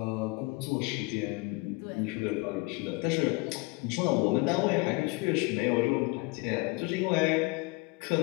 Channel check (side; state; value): right; quieter; 25.7 dB